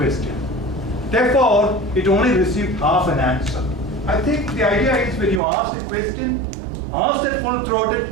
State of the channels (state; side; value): drops out; left; at 5.4 s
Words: Therefore, it only received half an answer. I think the idea is when you ask a question, ask it